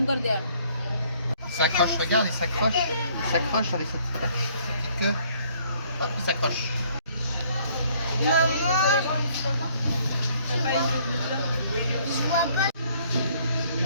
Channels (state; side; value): inverted; both; correlation -0.62